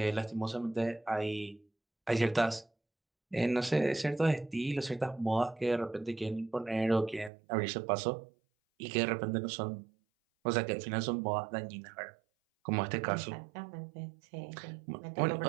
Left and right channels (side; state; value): left; drops out; at 7.3 s